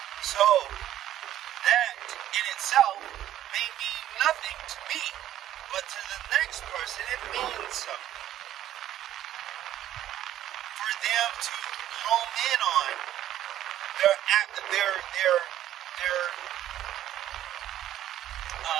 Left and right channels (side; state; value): left; quieter; 12.3 dB